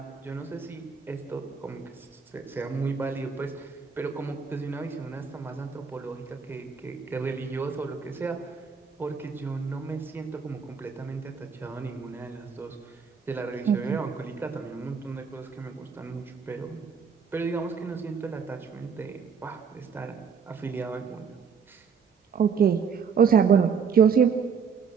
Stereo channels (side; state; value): left; quieter; 6.3 dB